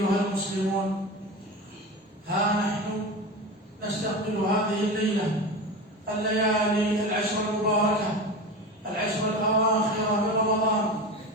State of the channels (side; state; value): both; normal; correlation 0.27